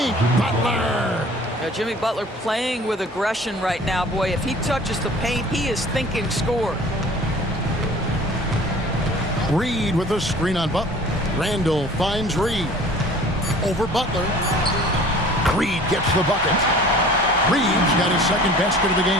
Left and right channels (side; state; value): both; normal; correlation 0.47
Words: Butler. Now, Jimmy Butler playing with aggression right now. Boy, if he touches the paint, he is thinking score. Reed with a screen on Butler. Randall finds Reed. Over Butler. Reed gets the bucket. Reed's got his second basket of the